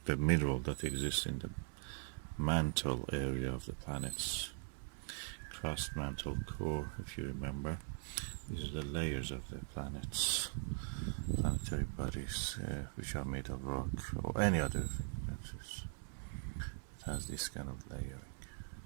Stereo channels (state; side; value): silent; left; digital silence